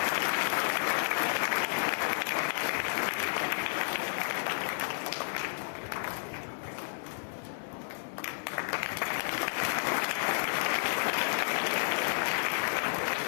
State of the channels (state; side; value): silent; right; 56 dB below the other